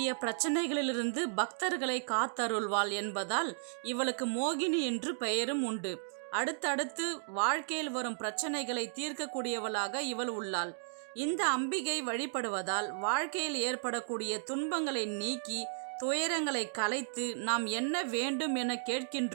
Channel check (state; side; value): silent; left; digital silence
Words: பிரச்சனைகளிலிருந்து பக்தர்களை காத்தருள்வாள் என்பதால் இவளுக்கு மோகினி என்று பெயரும் உண்டு. அடுத்தடுத்து வாழ்க்கையில் வரும் பிரச்சனைகளை தீர்க்கக்கூடியவளாக இவள் உள்ளாள். இந்த அம்பிகை வழிபடுவதால் வாழ்க்கையில் ஏற்படக்கூடிய துன்பங்களை நீக்கி துயரங்களை கலைத்து நாம் என்ன வேண்டும் என